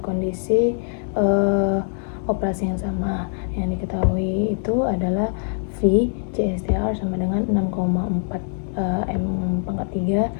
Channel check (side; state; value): right; silent; digital silence